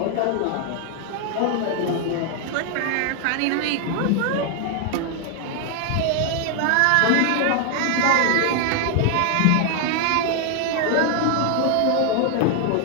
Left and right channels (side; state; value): both; different; correlation 0.00